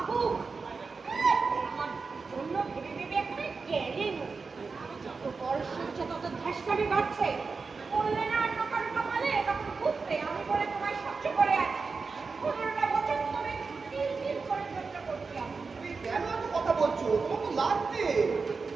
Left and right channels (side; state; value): left; quieter; 4.6 dB